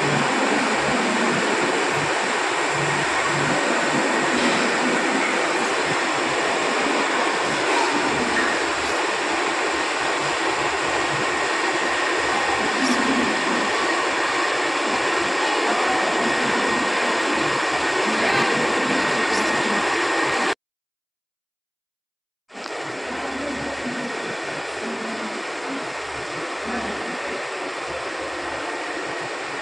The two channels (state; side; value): identical; both; correlation 1.00